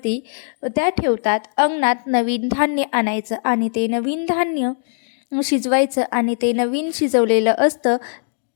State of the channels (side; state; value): right; silent; digital silence